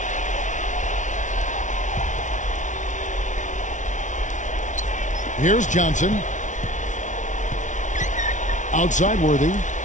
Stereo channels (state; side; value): late; right; 0.36 ms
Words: Here's Johnson. Outside Worthy.